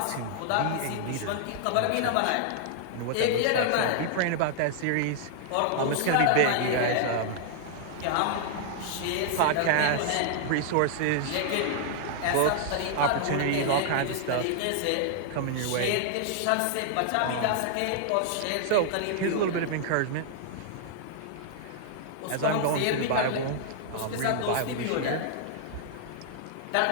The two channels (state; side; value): different; both; correlation -0.01